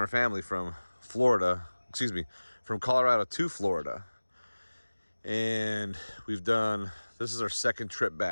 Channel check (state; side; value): inverted; both; correlation -1.00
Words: family from from Colorado to Florida. And we've done, this is our second trip